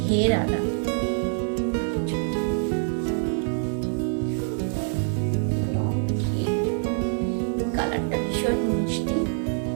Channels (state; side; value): silent; left; digital silence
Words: ঘেরালা, লং ঘের। কালারটা ভীষণ মিষ্টি,